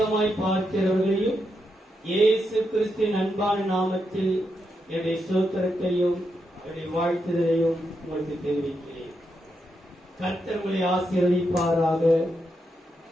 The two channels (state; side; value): normal; both; correlation 0.83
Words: பார்க்கிறவர்களையும் இயேசு கிறிஸ்துவின் அன்பான நாமத்தில் என்னுடைய ஸ்தோத்திரத்தையும் என்னுடைய வாழ்த்துதலையும் உங்களுக்கு தெரிவிக்கிறேன். கர்த்தர் உங்களை ஆசீர்வதிப்பாராக.